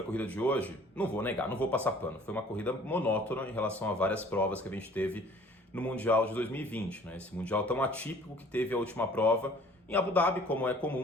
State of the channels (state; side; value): normal; both; correlation 0.52